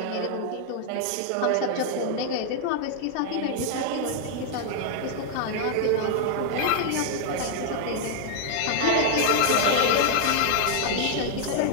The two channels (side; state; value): both; different; correlation -0.01